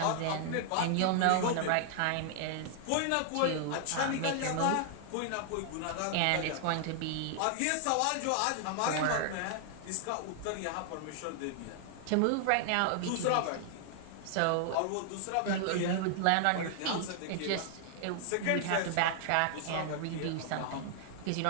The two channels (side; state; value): both; different; correlation 0.00